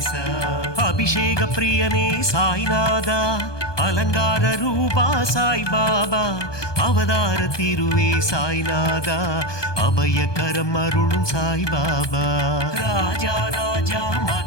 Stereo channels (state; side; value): late; right; 1.2 ms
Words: அபிஷேக பிரியனே சாய்நாதா அலங்கார ரூபா சாய்பாபா அவதார திருவே சாய்நாதா அபயகரம் அருளும் சாய்பாபா ராஜா ராஜா